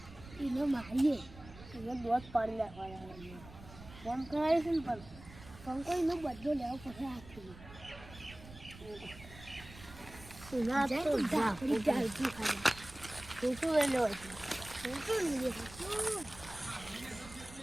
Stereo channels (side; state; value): right; noise; rumble, 17 dB below the sound